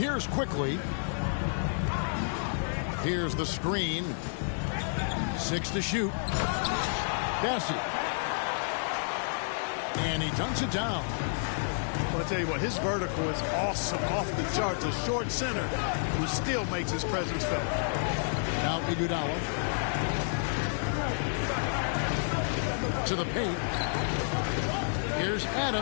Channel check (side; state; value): right; silent; digital silence